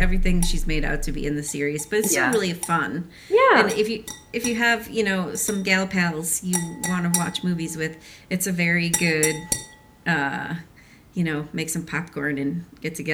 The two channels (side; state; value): both; identical; correlation 1.00